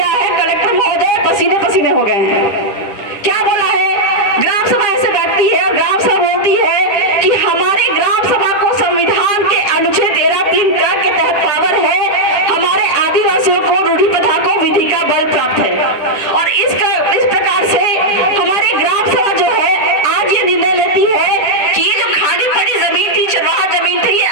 है, कलेक्टर महोदय पसीने पसीने हो गए हैं। क्या बोला है? ग्राम सभा ऐसे बैठती है और ग्राम सभा बोलती है कि हमारे ग्राम सभा को संविधान के अनुच्छेद 13(3) के तहत पावर है, हमारे आदिवासियों को रूढ़ी प्रथा को विधि का बल प्राप्त है। और इस प्रकार से हमारी ग्राम सभा जो है आज ये निर्णय लेती है कि ये जो खाली पड़ी जमीन थी, चरवाहा जमीन थी, ये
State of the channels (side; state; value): right; late; 10 ms